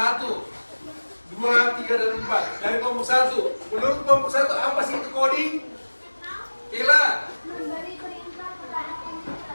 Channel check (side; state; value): both; inverted; correlation -1.00